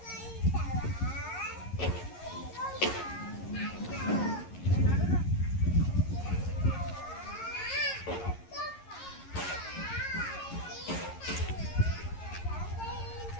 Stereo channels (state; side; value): late; right; 11 ms